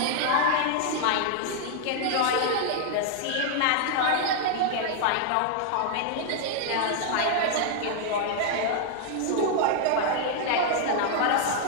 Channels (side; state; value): both; different; correlation 0.00